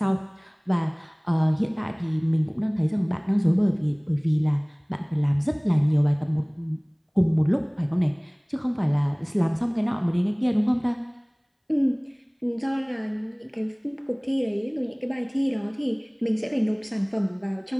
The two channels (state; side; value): identical; both; correlation 1.00